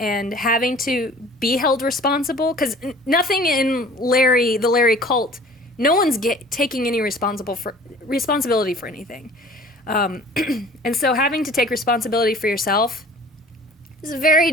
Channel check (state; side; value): normal; both; correlation 0.47